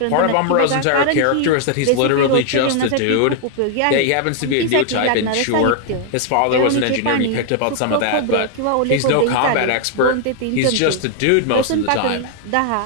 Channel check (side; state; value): both; different; correlation 0.00